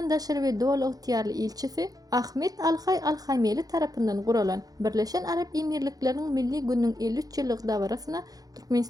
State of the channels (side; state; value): left; late; 0.18 ms